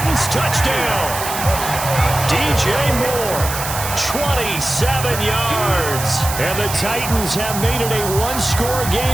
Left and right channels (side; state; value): right; noise; hiss, 6 dB below the sound